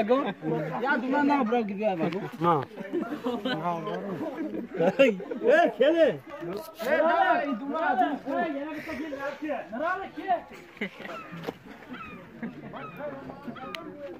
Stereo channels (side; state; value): both; identical; correlation 1.00